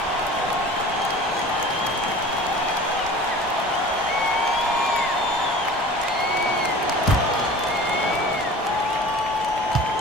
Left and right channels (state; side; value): normal; both; correlation 0.41